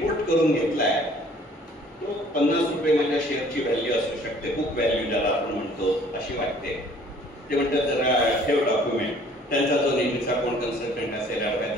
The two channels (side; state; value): both; normal; correlation 0.55